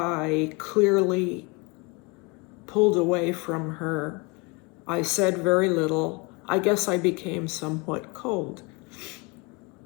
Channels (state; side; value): quieter; right; 28.5 dB